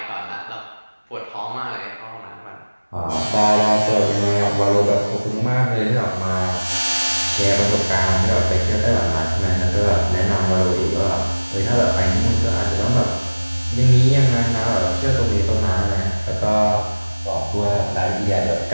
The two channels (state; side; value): inverted; both; correlation -1.00